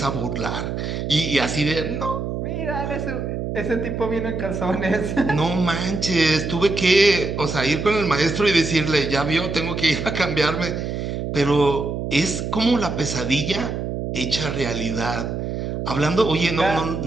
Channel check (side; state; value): right; noise; hum, 4 dB below the sound